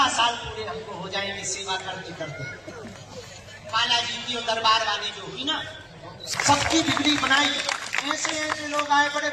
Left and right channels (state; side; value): identical; both; correlation 1.00